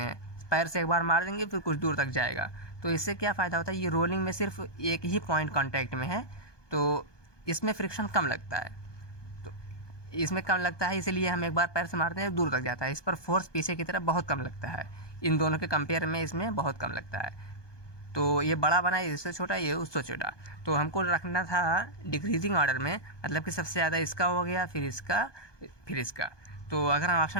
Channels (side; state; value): right; late; 1.2 ms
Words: हैं। पैर से एक बार मार देंगे फिर कुछ दूर तक जाएगा। तो इससे क्या फ़ायदा होता है, ये रोलिंग में सिर्फ एक ही पॉइंट कांटेक्ट में है, तो इसमें फ्रिक्शन कम लगता है। तो इसमें कम लगता है इसलिए हम एक बार पैर से मारते हैं दूर तक जाता है। इस पर फोर्स पीछे की तरफ बहुत कम लगता है, इन दोनों के कंपेयर में इसमें बहुत कम लगता है। तो ये बड़ा बना, इससे छोटा, ये उससे छोटा। तो हमको रखना था डिक्रीजिंग ऑर्डर में, मतलब कि सबसे ज़्यादा इसका हो गया, फिर इसका, फिर इसका। तो अगर हम